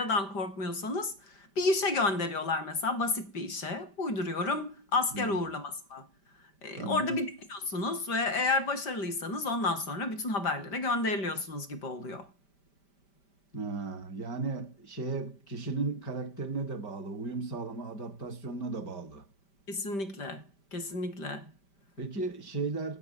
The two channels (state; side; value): late; right; 5.1 ms